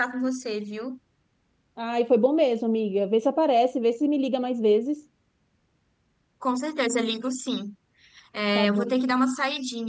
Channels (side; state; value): both; identical; correlation 1.00